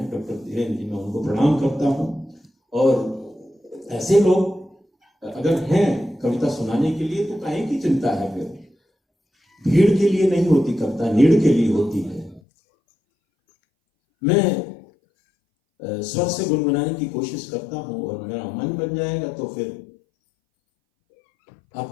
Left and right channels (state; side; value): drops out; right; at 12.4 s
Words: डॉक्टर धीरेन्द्र जी, मैं उनको प्रणाम करता हूँ। और ऐसे लोग अगर हैं कविता सुनाने के लिए तो काहे की चिंता है? फिर भीड़ के लिए नहीं होती कविता, नीड़ के लिए होती है। मैं स्वर से गुनगुनाने की कोशिश करता हूं, और मेरा मन बन जाएगा तो फिर